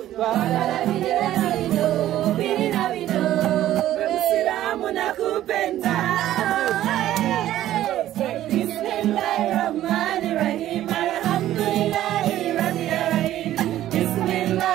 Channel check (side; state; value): left; quieter; 13.2 dB